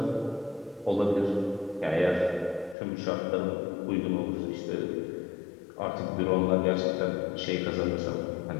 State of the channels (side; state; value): right; drops out; at 2.8 s